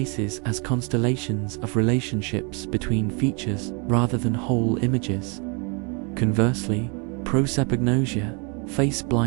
as constellations of relationships between features rather than whole images. Conversely, prosopagnosia, face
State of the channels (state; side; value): quieter; left; 33.9 dB